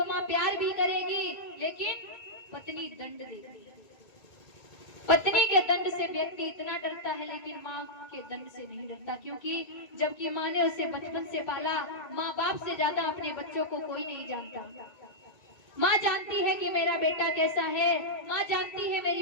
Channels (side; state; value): right; late; 2.2 ms